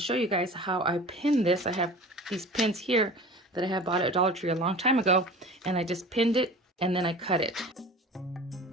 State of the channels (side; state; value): both; normal; correlation 0.39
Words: show you guys how I pin this. I have these pins here that I had bought at Dollar Tree a long time ago, and I just pinned it and then I cut it.